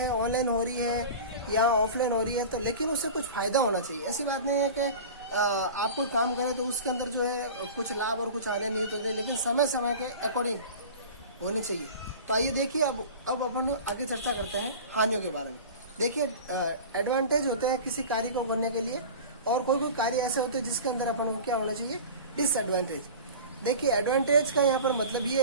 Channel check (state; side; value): inverted; both; correlation -0.36